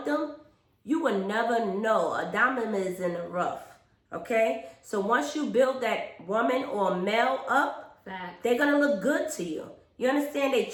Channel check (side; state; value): both; identical; correlation 1.00